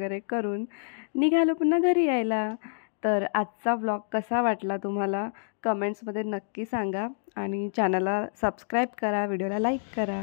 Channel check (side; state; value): right; silent; digital silence